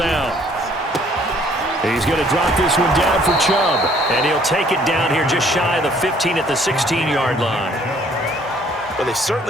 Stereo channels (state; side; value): normal; both; correlation 0.60